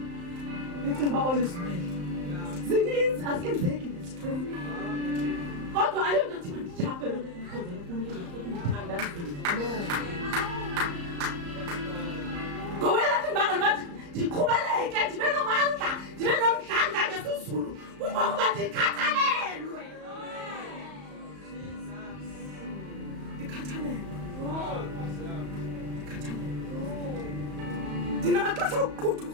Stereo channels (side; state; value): left; late; 35 ms